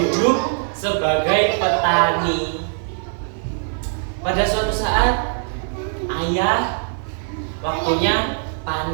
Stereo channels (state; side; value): silent; left; 56 dB below the other